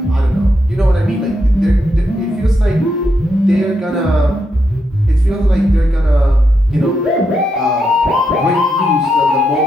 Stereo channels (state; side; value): normal; both; correlation 0.82